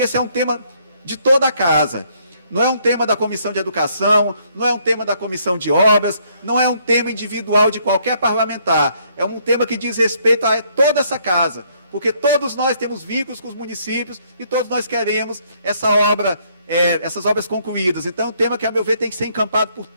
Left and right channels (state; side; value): inverted; both; correlation -0.68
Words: esse é um tema de toda a casa. Não é um tema da Comissão de Educação, não é um tema da Comissão de Obras, não é um tema individual de qualquer parlamentar. É um tema que diz respeito a toda essa casa. porque todos nós temos vínculos com os municípios e todos nós queremos essas obras concluídas. Então, é um tema que, a meu ver, tem que ser encampado por